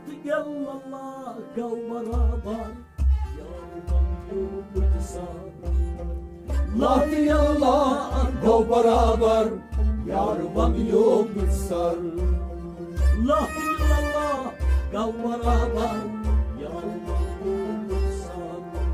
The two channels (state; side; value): identical; both; correlation 1.00